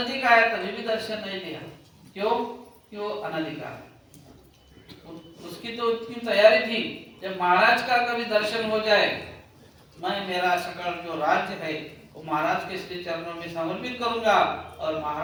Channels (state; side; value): identical; both; correlation 1.00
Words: आया तभी भी दर्शन नहीं दिया। क्यों? कि वो अनाधिकार है। उसकी तो इतनी तैयारी थी, जब महाराज का कभी दर्शन हो जाए, मैं मेरा सकल जो राज्य है वो महाराज के श्री चरणों में समर्पित करूंगा और